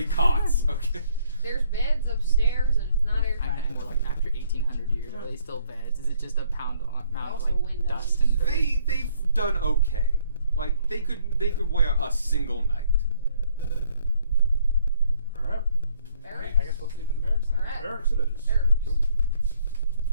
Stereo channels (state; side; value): inverted; both; correlation -0.65